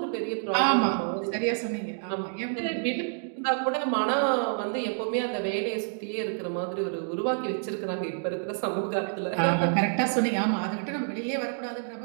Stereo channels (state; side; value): silent; left; digital silence